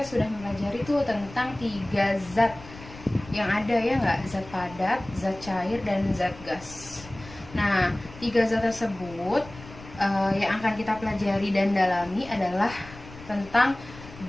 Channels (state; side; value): noise; left; rumble, 17 dB below the sound